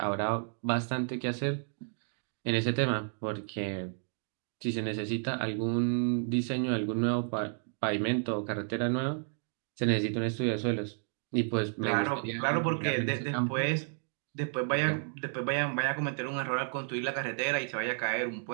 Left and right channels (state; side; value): silent; left; 57 dB below the other